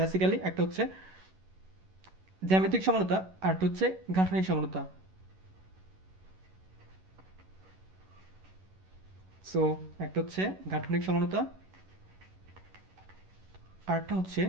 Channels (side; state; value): left; late; 11 ms